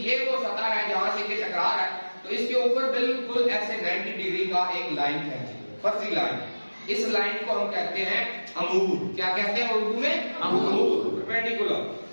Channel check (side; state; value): both; inverted; correlation -1.00